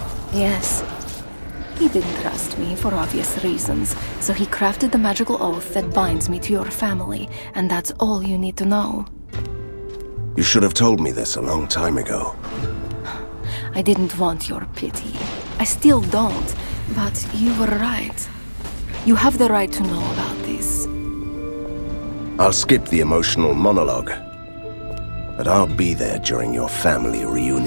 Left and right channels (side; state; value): both; inverted; correlation -1.00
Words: Yes. He didn't trust me for obvious reasons, so he crafted the magical oath that binds me to your family, and that's all you need to know. You should have told me this a long time ago. I didn't want your pity. I still don't, but you were right. You have the right to know about this. I'll skip the emotional monologue, but I'll be there during your family